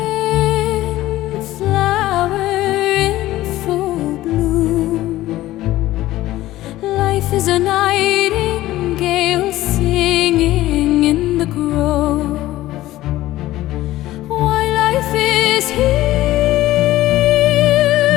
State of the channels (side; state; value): right; quieter; 15.8 dB